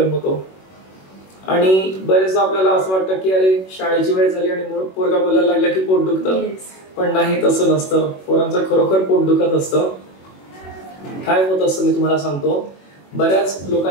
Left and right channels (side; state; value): right; late; 21 ms